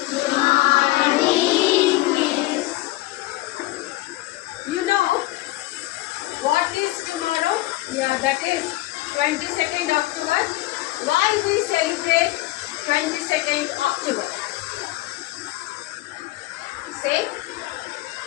You know what is tomorrow? Yeah, that is 22nd October. Why we celebrate 22nd October? Say.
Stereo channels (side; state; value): right; quieter; 18.5 dB